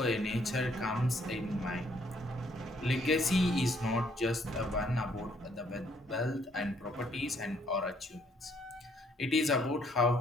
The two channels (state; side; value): normal; both; correlation 0.67